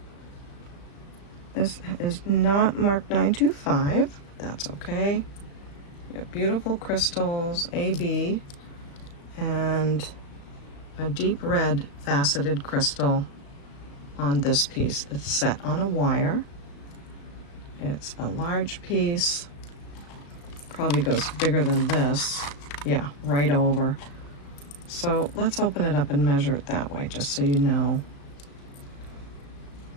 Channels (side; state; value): right; late; 35 ms